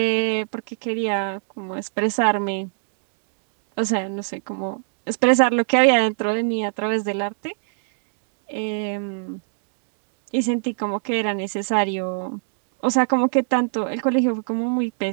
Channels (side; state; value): left; silent; digital silence